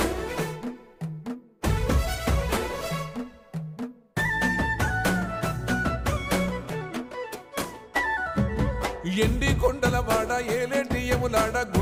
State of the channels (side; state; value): both; identical; correlation 1.00